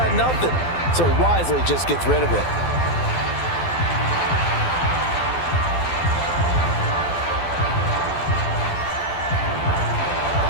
nothing, so he wisely just gets rid of it.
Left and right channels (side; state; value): right; late; 12 ms